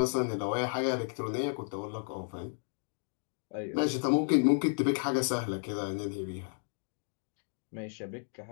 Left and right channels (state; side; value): silent; right; digital silence